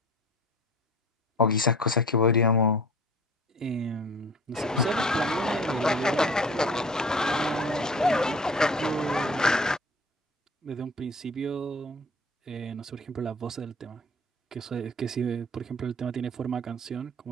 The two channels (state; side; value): normal; both; correlation 0.43